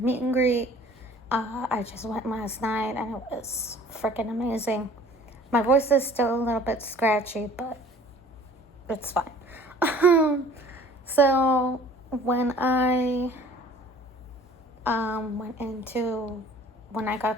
and greet. I just went last night and it was freaking amazing. My voice is still a little bit scratchy, but it's fine. So when I when I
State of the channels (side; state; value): both; normal; correlation 0.50